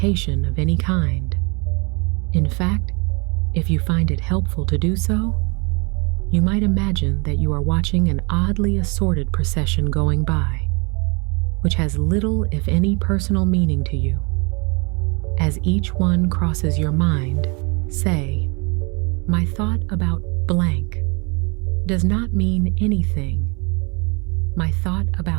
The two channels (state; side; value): quieter; left; 31.5 dB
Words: of any kind. In fact, if you find it helpful to do so, you might imagine that you are watching an oddly assorted procession going by, which has little, if any, personal meaning to you. As each one crosses your mind, say, "My thought about blank does not mean anything. My thought